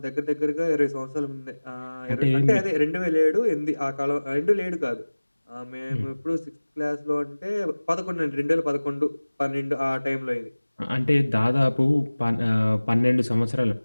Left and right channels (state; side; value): inverted; both; correlation -1.00